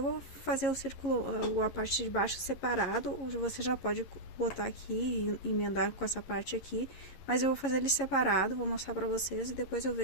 vou fazer o círculo, a parte de baixo separado, você já pode botar aqui e emendar com essa parte aqui, mas eu vou fazer ele separado, vou mostrar pra vocês e depois eu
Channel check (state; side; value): late; right; 11 ms